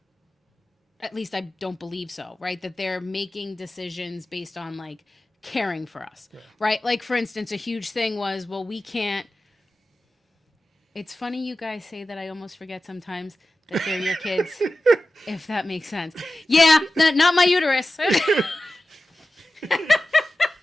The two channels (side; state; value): both; normal; correlation 0.94